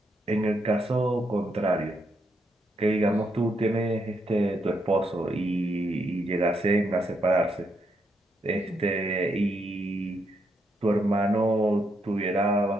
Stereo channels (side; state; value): both; normal; correlation 0.78